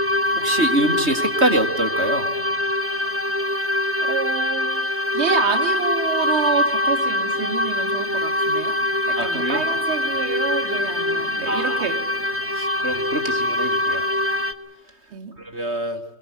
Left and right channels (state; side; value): late; left; 3.2 ms